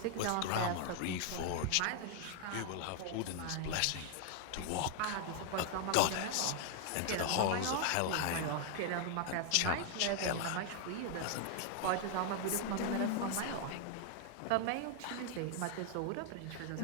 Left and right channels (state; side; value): different; both; correlation 0.00